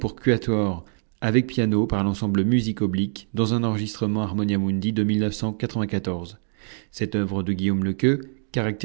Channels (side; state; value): left; silent; 62 dB below the other